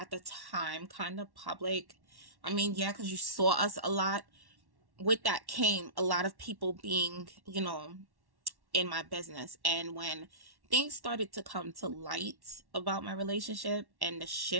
the time kind of public, I mean, yeah, because you saw us a lot. With that came a lot of people being, in my business. And when things started to come to light about my relationship and the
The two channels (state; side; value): late; left; 1.1 ms